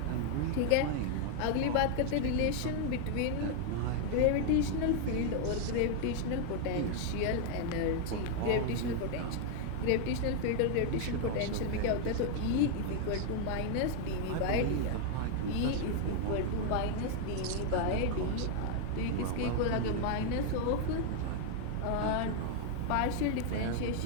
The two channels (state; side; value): different; both; correlation 0.00